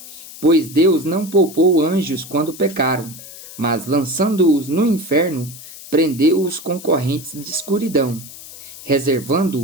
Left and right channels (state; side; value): noise; left; hiss, 16 dB below the sound